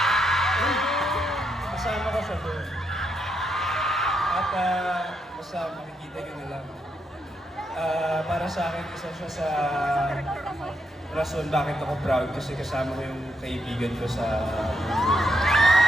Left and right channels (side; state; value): both; normal; correlation 0.80